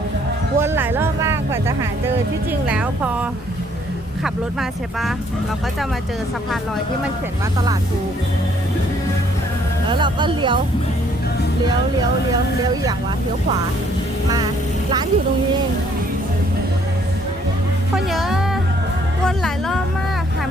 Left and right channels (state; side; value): normal; both; correlation 0.64